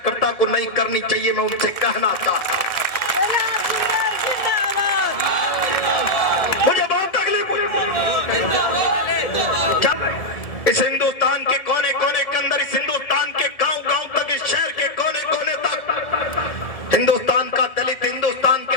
को नहीं करनी चाहिए। मैं उनसे कहना चाहता हूं, मुझे बहुत तकलीफ हुई। इस हिंदुस्तान के कोने कोने के अंदर, इस हिंदुस्तान के गांव गांव तक, इस शहर के कोने कोने तक हिंदुस्तान का दलित, हिंदुस्तान के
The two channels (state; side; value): late; right; 1.7 ms